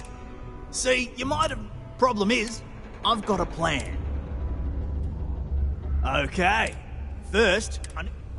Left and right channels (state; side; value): identical; both; correlation 1.00